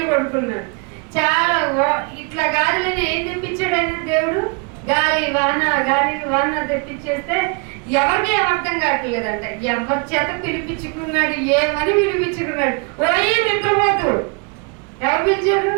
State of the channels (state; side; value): quieter; left; 34.3 dB